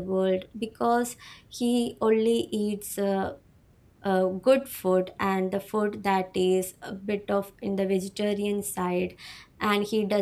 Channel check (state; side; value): identical; both; correlation 1.00